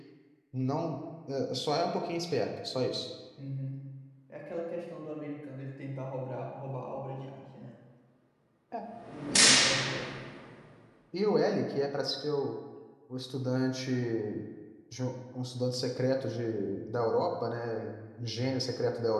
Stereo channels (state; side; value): identical; both; correlation 1.00